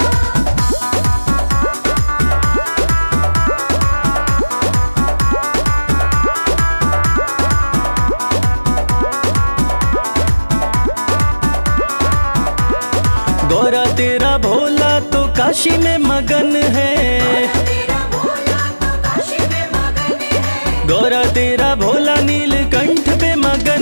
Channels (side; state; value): both; inverted; correlation -1.00